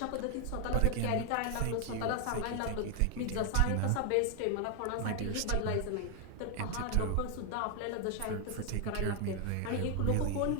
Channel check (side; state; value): both; different; correlation 0.00